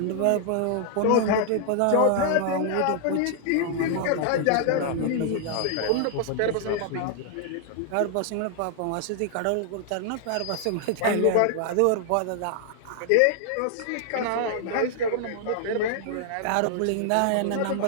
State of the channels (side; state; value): both; different; correlation 0.00